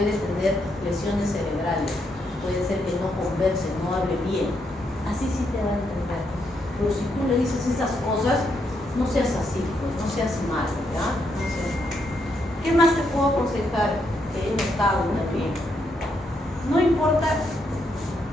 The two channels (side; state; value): both; normal; correlation 0.78